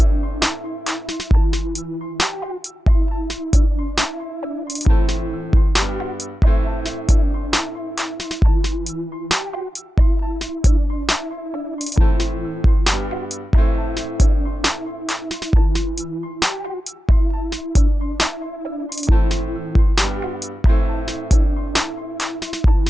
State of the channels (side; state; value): both; normal; correlation 0.93